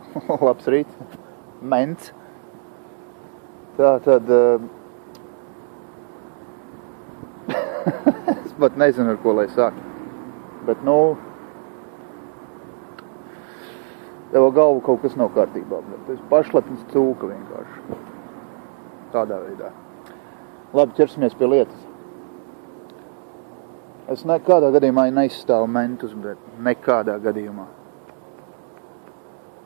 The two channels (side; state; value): left; silent; digital silence